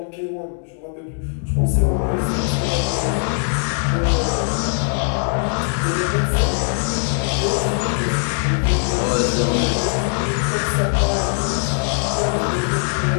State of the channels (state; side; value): silent; right; 60 dB below the other